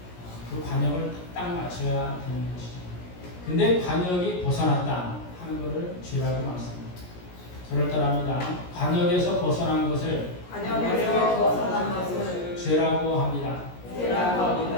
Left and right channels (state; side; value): late; right; 17 ms